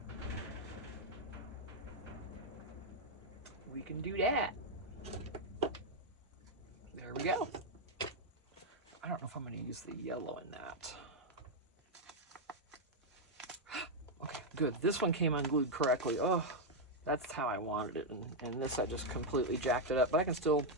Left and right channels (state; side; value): normal; both; correlation 0.00